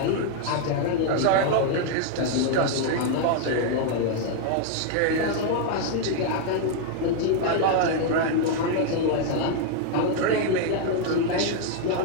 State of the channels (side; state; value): both; different; correlation 0.00